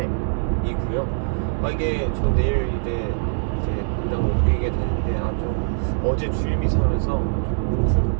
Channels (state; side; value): silent; left; digital silence